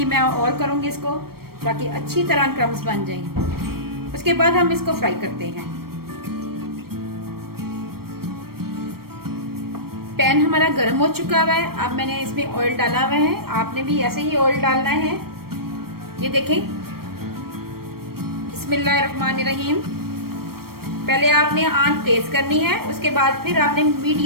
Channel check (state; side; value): late; left; 0.94 ms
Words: मैं और करूंगी इसको, ताकि अच्छी तरह क्रम्स बन जाएं। उसके बाद हम इसको फ्राई करते हैं। पैन हमारा गर्म हो चुका हुआ है। अब मैंने इसमें ऑयल डाला हुआ है, आपने भी ऐसे ही ऑयल डालना है। ये देखें, बिस्मिल्लाहिर्रहमानिर्रहीम। पहले आपने आंच तेज करनी है, उसके बाद फिर आपने